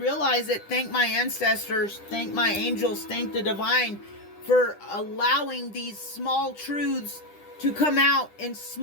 it, thank my ancestors, thank my angels, thank the divine for allowing these small truths to come out in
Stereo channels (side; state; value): right; late; 10 ms